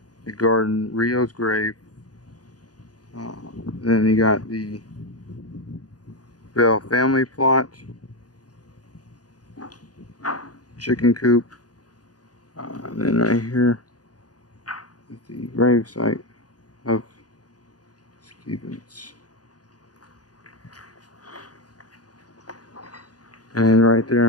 the garden, Rio's grave. Then you got the Bell family plot, chicken coop, and then right here is the grave site of Stevens. And then right there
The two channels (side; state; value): right; late; 0.68 ms